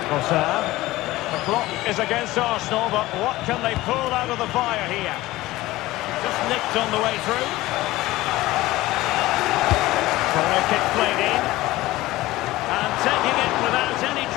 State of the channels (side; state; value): right; quieter; 17.8 dB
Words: Trossard. The clock is against Arsenal, but what can they pull out of the fire here? Just nicked on the way through. Corner kick played in. And taking it without any